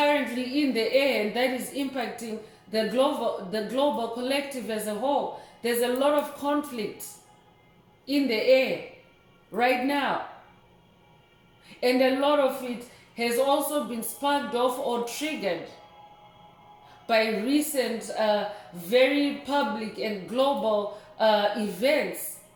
in the air, and that is impacting the global collective as a whole. There's a lot of conflict in the air right now, and a lot of it has also been sparked off or triggered by recent very public and global events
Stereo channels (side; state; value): both; identical; correlation 1.00